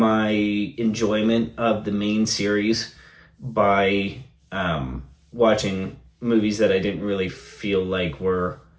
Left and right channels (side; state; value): both; identical; correlation 1.00